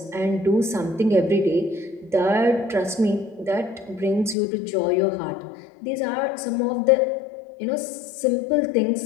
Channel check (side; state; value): right; drops out; at 4.4 s